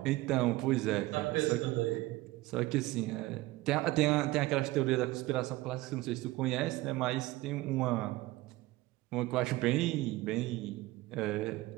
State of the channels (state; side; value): quieter; left; 18.8 dB